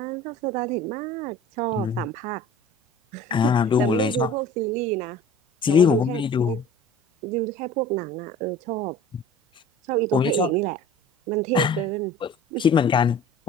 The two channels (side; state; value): both; normal; correlation 0.44